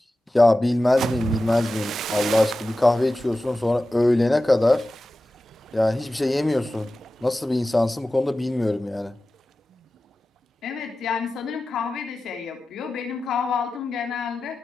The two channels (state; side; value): normal; both; correlation 0.94